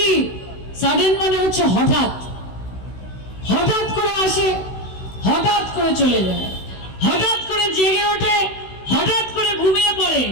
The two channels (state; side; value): late; right; 16 ms